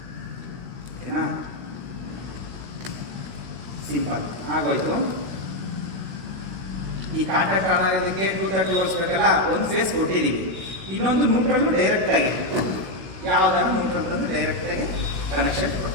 ಓಕೆನಾ? ಸಿಂಪಲ್ ಆಗೋಯ್ತು. ಈ ಕಾಂಟ್ಯಾಕ್ಟ್ ಆನ್ ಆಗೋದಕ್ಕೆ 230 ವೋಲ್ಟ್ಸ್ ಬೇಕಲ್ಲ, ಒಂದು ಫೇಸ್ ಕೊಟ್ಟಿದ್ದೀವಿ. ಇನ್ನೊಂದು ನ್ಯೂಟ್ರಲ್ ಡೈರೆಕ್ಟಾಗಿ ಯಾವುದಾದ್ರು ನ್ಯೂಟ್ರಲ್ ತಂದು ಡೈರೆಕ್ಟಾಗಿ ಕನೆಕ್ಷನ್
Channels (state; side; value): late; left; 16 ms